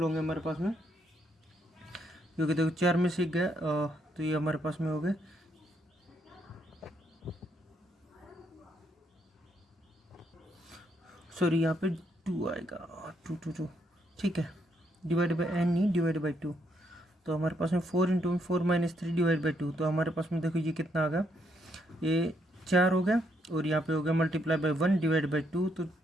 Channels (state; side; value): normal; both; correlation 0.75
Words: होंगे हमारे पास में, क्योंकि देखो 4 में से गया, तो ये हमारे पास में हो गए, सॉरी यहाँ पे 2 आएगा, 2। ठीक है, डिवाइड बाई n नहीं, डिवाइड बाई 2। तो हमारे पास में 4 इंटू में 4-3 डिवाइड बाई 2। तो हमारे पास में देखो ये कितना आ गया, ये 4 हो गया और यहाँ पे हो गया मल्टीप्लाई बाई 1 डिवाइड बाई 2। तो